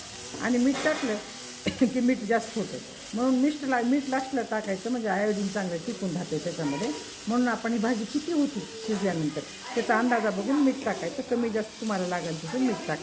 आणि मीठ टाकलं की मीठ जास्त होतं. म्हणून मीठ लास्टला टाकायचं, म्हणजे आयोडीन चांगलं टिकून राहते त्याच्यामध्ये. म्हणून आपण ही भाजी किती होती शिजल्यानंतर त्याचा अंदाजा बघून मीठ टाकायचं. कमी जास्त तुम्हाला लागेल तसं मीठ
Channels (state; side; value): identical; both; correlation 1.00